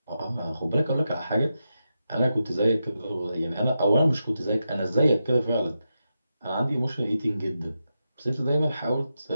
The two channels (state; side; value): inverted; both; correlation -0.88